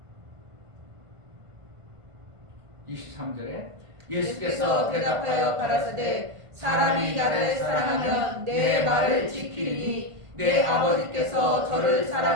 (23절에) 예수께서 대답하여 가라사대 사람이 나를 사랑하면 내 말을 지키리니 내 아버지께서 저를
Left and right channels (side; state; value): left; late; 1.5 ms